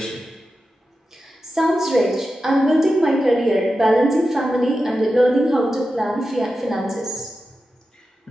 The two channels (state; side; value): normal; both; correlation 0.91